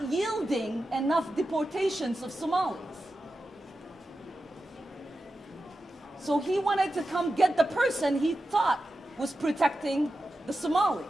yielding enough deportations of Somalis. So he wanted to come get the person he thought was protecting the Somalis.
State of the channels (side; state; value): both; normal; correlation 0.91